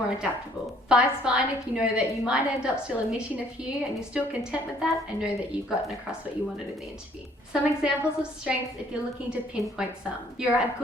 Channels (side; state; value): both; normal; correlation 0.61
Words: adaptable. 5's fine if you know that you might end up still omitting a few and you're still content with that and know that you've gotten across what you wanted in the interview. Some examples of strengths if you're looking to pinpoint some. You're a